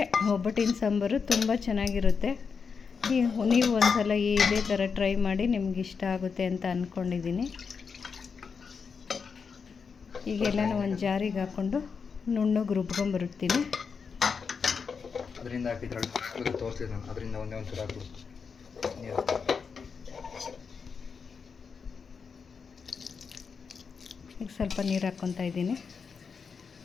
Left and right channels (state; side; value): quieter; right; 5.7 dB